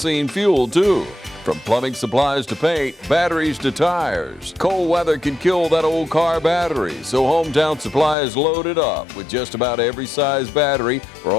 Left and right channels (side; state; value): right; drops out; at 8.2 s